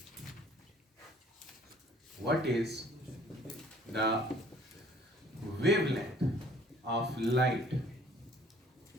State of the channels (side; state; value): both; normal; correlation 0.56